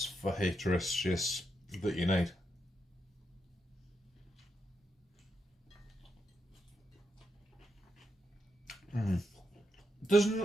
fajitas that you need. Does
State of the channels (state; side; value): normal; both; correlation 0.83